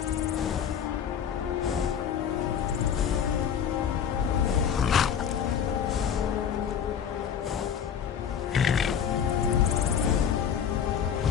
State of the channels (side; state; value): right; quieter; 8.2 dB